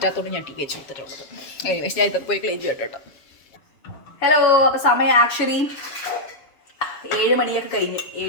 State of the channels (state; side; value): late; right; 7.3 ms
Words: ഞാൻ TV വെച്ച് കൊടുത്തിട്ടുള്ളത്. പക്ഷേ ഞാൻ ഇതൊക്കെ പോയി ക്ലീൻ ചെയ്യട്ടോ. ഹലോ, അപ്പോൾ സമയം ആക്ച്വലി 7 മണിയൊക്കെ കഴിഞ്ഞ്